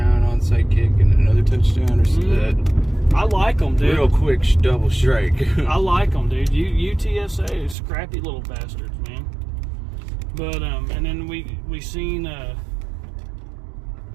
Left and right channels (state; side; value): drops out; left; at 7.8 s